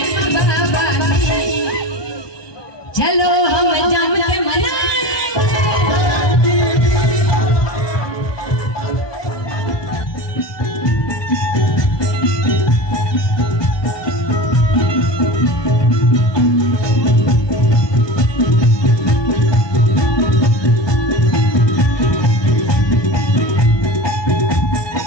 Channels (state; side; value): late; right; 1.2 ms